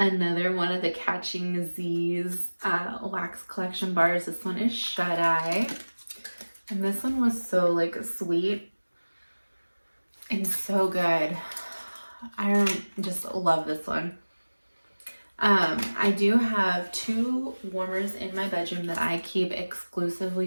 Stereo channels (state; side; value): inverted; both; correlation -1.00